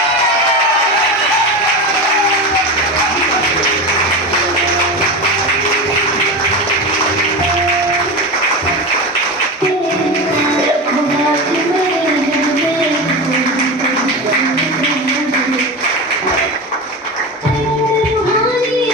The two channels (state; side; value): normal; both; correlation 0.23